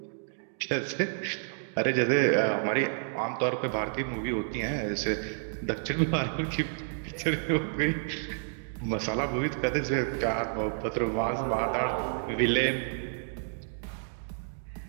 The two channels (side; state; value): left; silent; digital silence